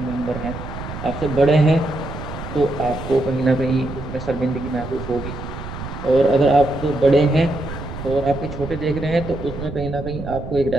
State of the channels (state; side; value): noise; right; rumble, 9 dB below the sound